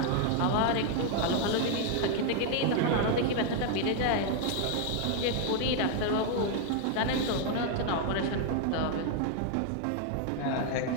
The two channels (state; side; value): different; both; correlation 0.00